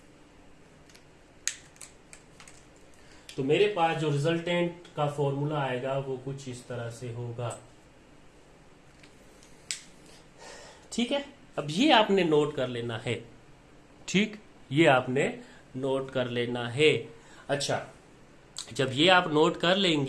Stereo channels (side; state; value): both; identical; correlation 1.00